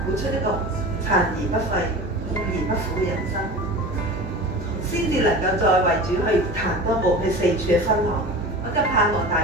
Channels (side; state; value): both; normal; correlation 0.34